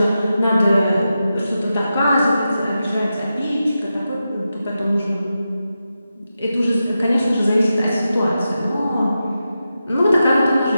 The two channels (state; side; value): inverted; both; correlation -0.90